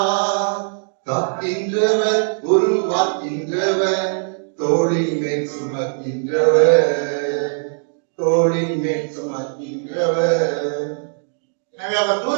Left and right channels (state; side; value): silent; left; digital silence